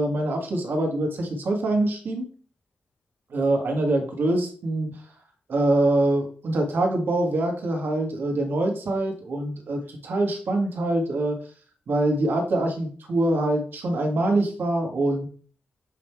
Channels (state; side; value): normal; both; correlation 0.85